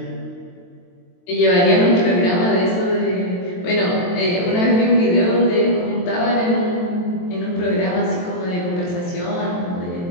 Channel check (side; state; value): right; late; 23 ms